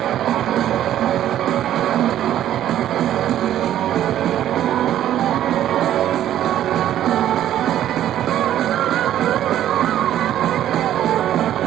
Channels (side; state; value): left; quieter; 11.8 dB